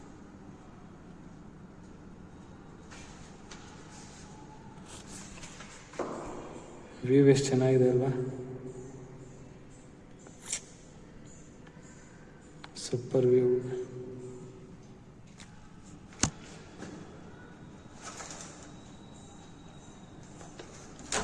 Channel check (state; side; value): identical; both; correlation 1.00